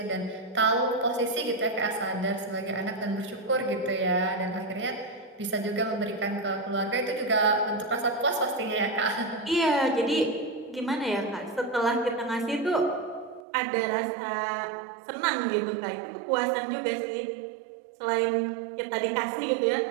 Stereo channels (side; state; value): left; drops out; at 13.4 s